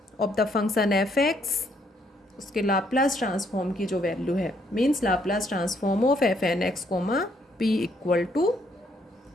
of the function F X, उसके लाप्लास ट्रांसफॉर्म की जो वैल्यू है, means Laplace transform of F N X comma P equal to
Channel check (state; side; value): normal; both; correlation 0.70